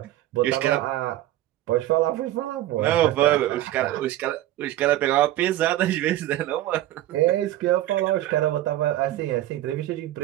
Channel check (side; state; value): left; quieter; 14.5 dB